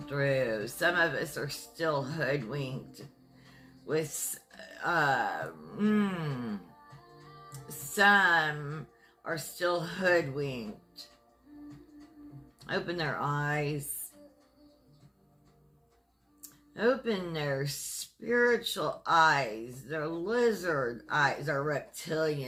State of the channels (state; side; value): identical; both; correlation 1.00